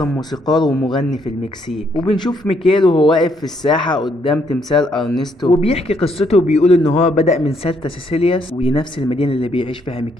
موسيقار ومغني في المكسيك. وبنشوف ميكيل وهو واقف في الساحة قدام تمثال ارنستو، وبيحكي قصته وبيقول ان هو بدأ من سانتا سيسيلياس، وهي نفس المدينة اللي بيعيش فيها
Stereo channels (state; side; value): normal; both; correlation 0.72